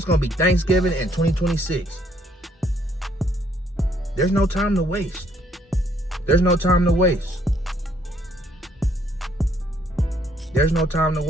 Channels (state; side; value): normal; both; correlation 0.67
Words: going to be Thanksgiving and 2026. There's no time to waste. There's no time to waste. There's no time to